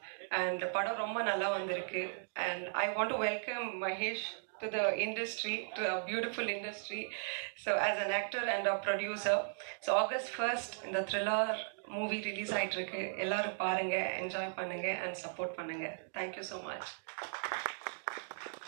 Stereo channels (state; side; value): silent; left; digital silence